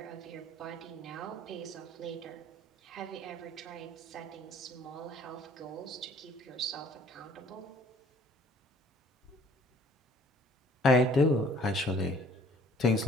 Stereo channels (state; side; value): normal; both; correlation 0.56